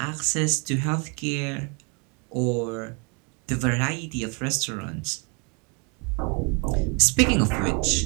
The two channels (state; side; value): quieter; left; 33.7 dB